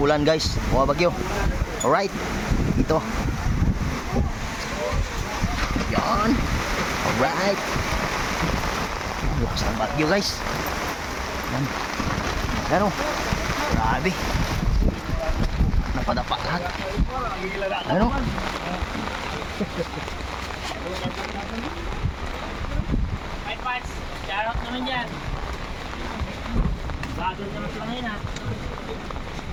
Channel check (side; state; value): both; identical; correlation 1.00